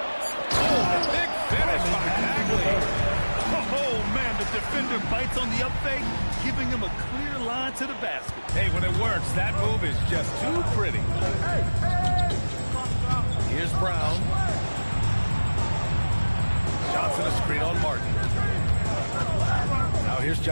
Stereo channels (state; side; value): inverted; both; correlation -1.00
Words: Oh, big finish by Bagley. Oh, man, the defender bites on the up fake, giving him a clear line to the basket. Hey, when it works, that move is just too pretty. Here's Brown. Johnson a screen on Martin. Now here's